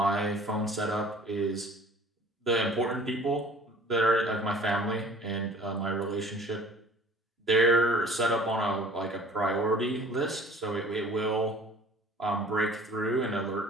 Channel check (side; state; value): both; normal; correlation 0.49